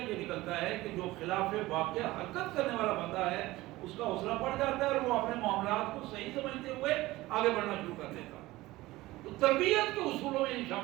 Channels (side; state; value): left; quieter; 18.5 dB